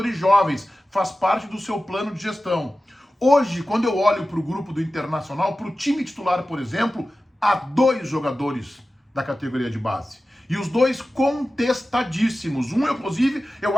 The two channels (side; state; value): both; normal; correlation 0.95